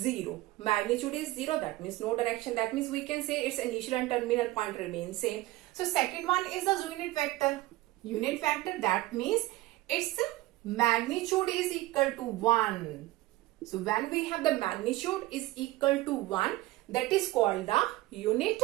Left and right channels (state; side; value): quieter; left; 18.3 dB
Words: Magnitude is 0, that means no direction. That means we can say its initial and terminal point remain same. So second one is the unit vector. Unit vector, that means its magnitude is equal to 1. So when we have the magnitude is equal to 1, that is called the unit